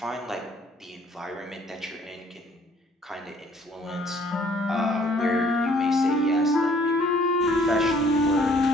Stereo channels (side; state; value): both; normal; correlation 0.60